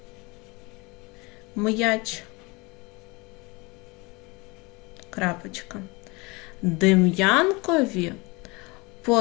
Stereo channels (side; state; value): right; quieter; 26.1 dB